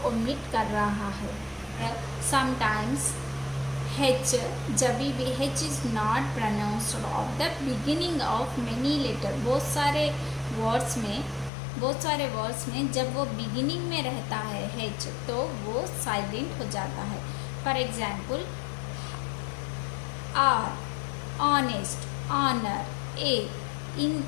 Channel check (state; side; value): drops out; right; at 11.5 s